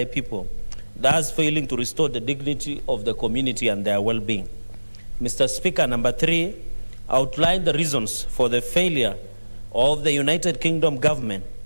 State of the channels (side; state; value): both; inverted; correlation -1.00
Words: people, thus failing to restore the dignity of the community and their well-being. Mr. Speaker, number 3, outline the reasons for the failure of the United Kingdom government